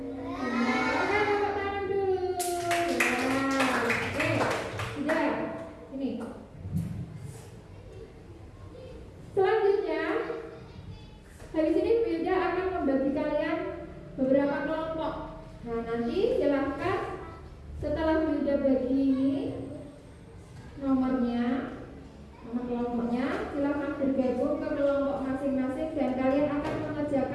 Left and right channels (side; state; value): both; identical; correlation 1.00